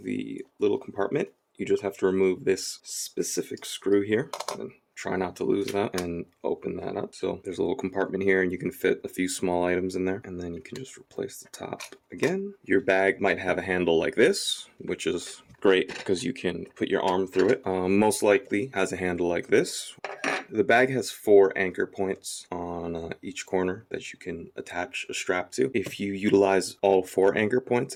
little compartment. You just have to remove this specific screw here, and try not to lose that, and open that up. So there's a little compartment here and you can fit a few small items in there, and then you can just replace the top again. Your bag might have a handle like this, which is great because you can put your arm through it. Most likely has a handle like this. The bag has 4 anchor points on each corner that you can attach a strap to. If you utilize all 4 anchor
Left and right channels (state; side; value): identical; both; correlation 1.00